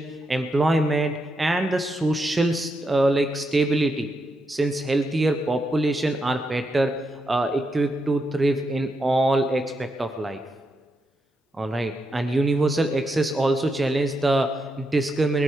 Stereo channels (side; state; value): both; normal; correlation 0.83